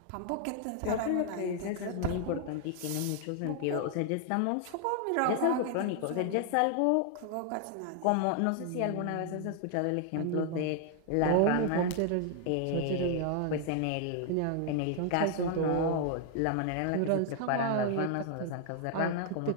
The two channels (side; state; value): both; different; correlation 0.00